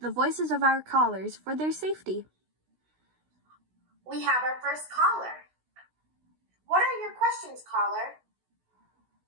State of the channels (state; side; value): late; left; 16 ms